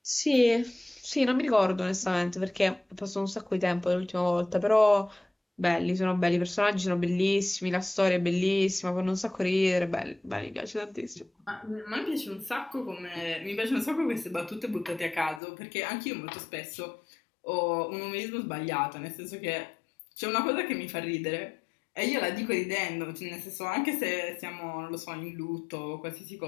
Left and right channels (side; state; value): right; drops out; at 15.4 s